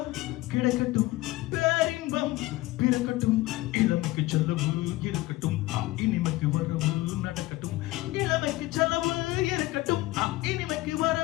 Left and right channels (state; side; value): quieter; right; 18.5 dB